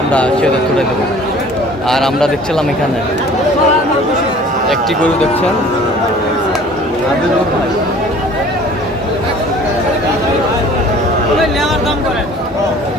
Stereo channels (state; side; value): normal; both; correlation 0.49